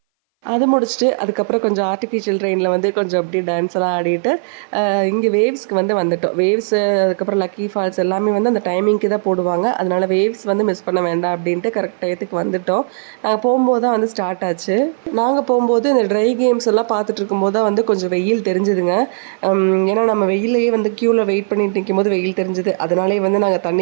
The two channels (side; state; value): left; silent; 60 dB below the other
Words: அது முடிச்சுட்டு அதுக்கப்புறம் கொஞ்சம் ஆர்டிஃபிஷியல் ட்ரெயினில் வந்து கொஞ்சம் அப்படியே டான்ஸ் எல்லாம் ஆடிட்டு இங்கே வேவ்ஸ்க்கு வந்து வந்துட்டோம். வேவ்ஸு அதுக்கப்புறம் லக்கி ஃபால்ஸ் எல்லாமே வந்து அந்த டைமிங்க்கு தான் போடுவாங்க. அதனால் வேவ்ஸ் வந்து மிஸ் பண்ண வேண்டாம் அப்படின்ட்டு கரெக்ட் டயத்துக்கு வந்துட்டோம். நாங்கள் போகும்போது தான் வந்து ஸ்டார்ட் ஆச்சு. நாங்கள் போகும்போது இந்த ட்ரை கேம்ஸ் எல்லாம் பார்த்துட்டு இருக்கும்போது தான் வந்து கொஞ்சம் வெயில் தெரிஞ்சுதுங்க. ஏன்னா நம்ம வெயிலையே வந்து க்யூவில் வெயிட் பண்ணிட்டு நிற்கும் போது வெயில் தெரிஞ்சுது. அதனாலே வந்து நாங்கள்